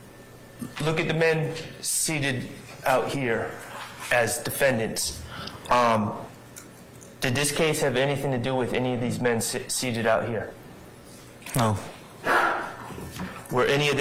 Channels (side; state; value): both; identical; correlation 1.00